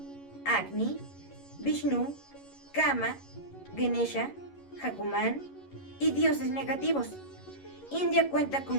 Agni, Vishnu, Kama, Ganesha, Hanuman y dioses negativos. India cuenta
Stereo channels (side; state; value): right; late; 11 ms